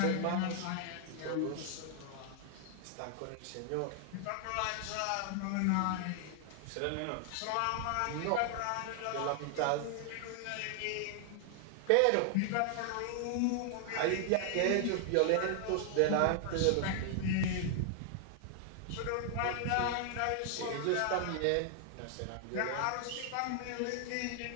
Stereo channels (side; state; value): both; different; correlation 0.00